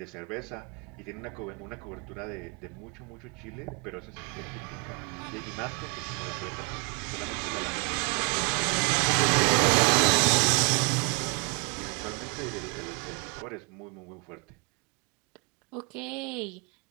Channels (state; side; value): quieter; left; 33.2 dB